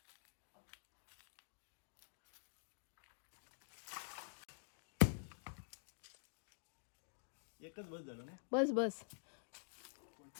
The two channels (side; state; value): right; silent; digital silence